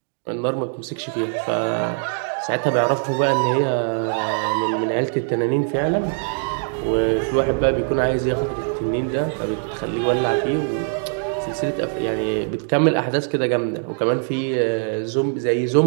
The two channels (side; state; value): left; silent; 62 dB below the other